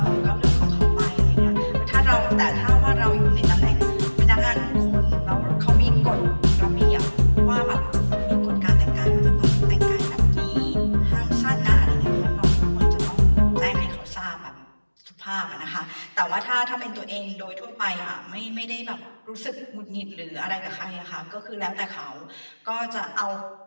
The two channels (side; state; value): both; inverted; correlation -1.00